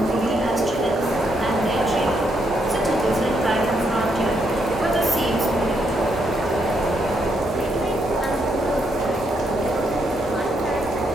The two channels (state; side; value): normal; both; correlation 0.77